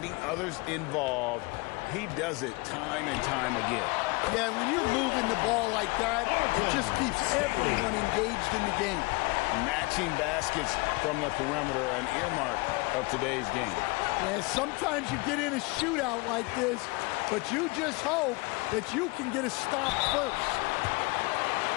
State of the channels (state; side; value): quieter; right; 26.2 dB